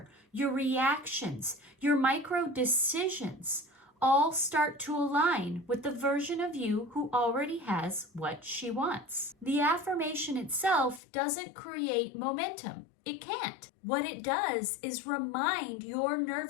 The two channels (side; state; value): right; drops out; at 11.0 s